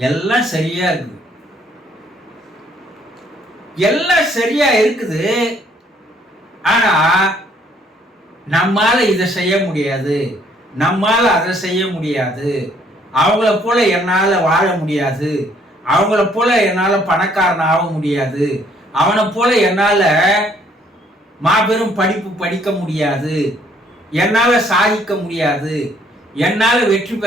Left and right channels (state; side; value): normal; both; correlation 0.64